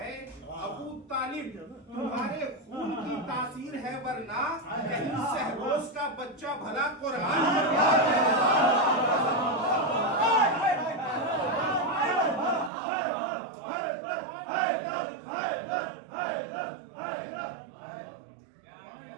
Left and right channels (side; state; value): left; drops out; at 12.7 s